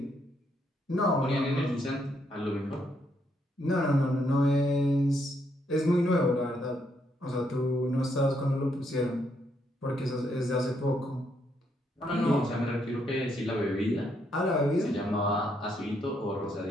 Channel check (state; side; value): normal; both; correlation 0.75